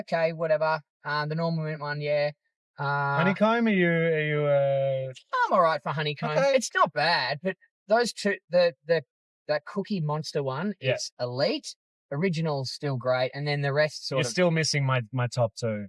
whatever. The normal mint one, Honeycomb, are you I'm all right for honeycomb. Okay. It's not bad, but those two, that Cookie Monster one is elite. Original's still great, and then the rest You're still missing my top 2,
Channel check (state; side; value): identical; both; correlation 1.00